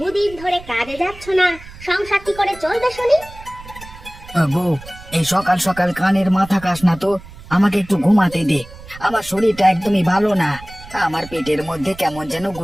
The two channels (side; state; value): right; noise; rumble, 18 dB below the sound